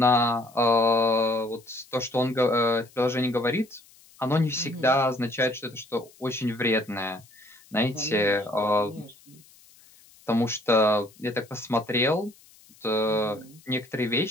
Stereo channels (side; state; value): left; noise; hiss, 27 dB below the sound